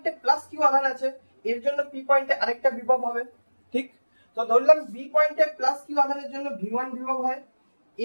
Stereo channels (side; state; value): both; inverted; correlation -1.00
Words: প্লাস কিউ আধান আছে, এর জন্য পি পয়েন্টে আরেকটা বিভব হবে। ঠিক, তো ধরলাম বি পয়েন্টে প্লাস কিউ আধানের জন্য ভি1 বিভব হয়,